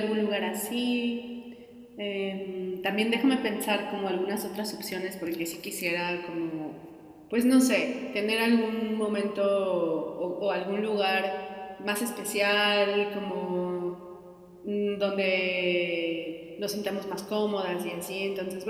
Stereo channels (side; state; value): both; identical; correlation 1.00